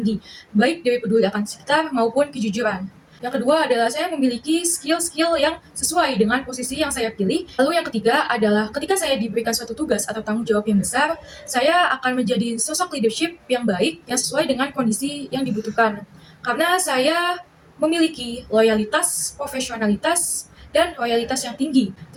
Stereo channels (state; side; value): identical; both; correlation 1.00